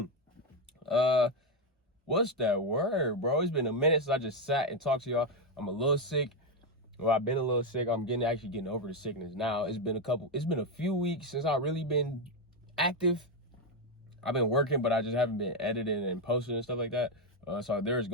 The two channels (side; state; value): both; normal; correlation 0.06